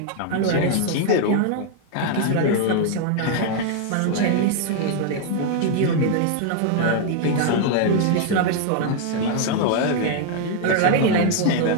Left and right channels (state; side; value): different; both; correlation 0.00